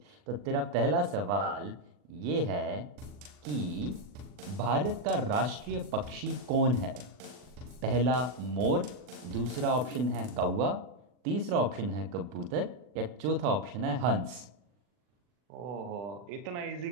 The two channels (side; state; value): left; late; 40 ms